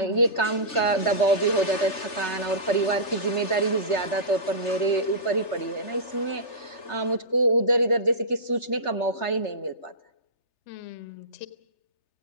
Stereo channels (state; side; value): late; right; 3.3 ms